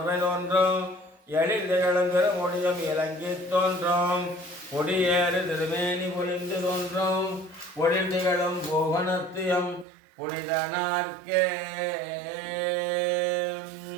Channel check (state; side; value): drops out; left; at 9.9 s